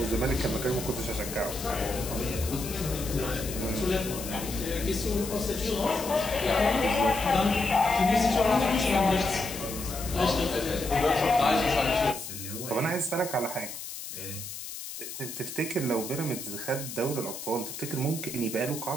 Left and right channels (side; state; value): left; noise; hiss, 9 dB below the sound